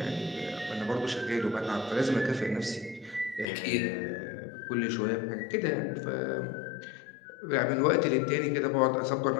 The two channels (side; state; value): right; drops out; at 3.5 s